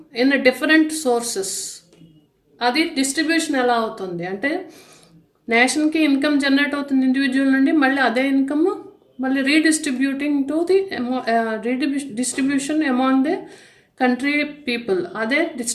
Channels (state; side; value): identical; both; correlation 1.00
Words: in different sources, అది డిస్ట్రిబ్యూషన్ ఎలా అవుతుంది అంటే నేషన్కి ఇన్కమ్ జనరేట్ అవుతుంది ఇండివిజువల్ నుండి, మళ్ళీ అదే ఇన్కమ్ మళ్ళీ redistributing to the distribution among the country people, అదే